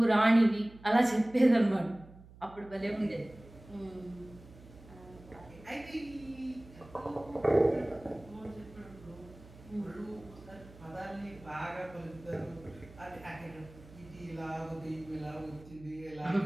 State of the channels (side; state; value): right; noise; hum, 20 dB below the sound